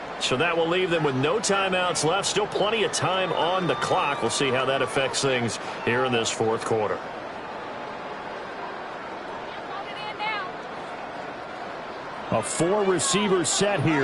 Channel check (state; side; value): identical; both; correlation 1.00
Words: So that will leave them with no timeouts left. Still plenty of time on the clock. We'll see how that affects things here in this 4th quarter. A 4-receiver set